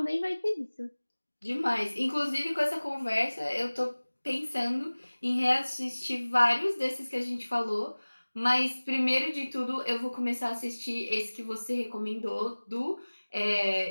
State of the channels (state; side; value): inverted; both; correlation -1.00